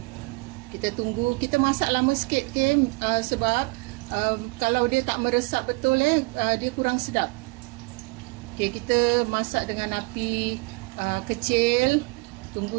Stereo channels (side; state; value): left; quieter; 25.8 dB